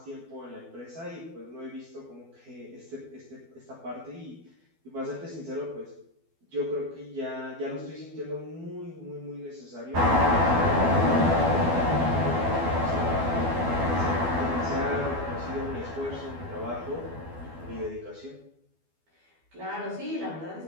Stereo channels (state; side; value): late; left; 12 ms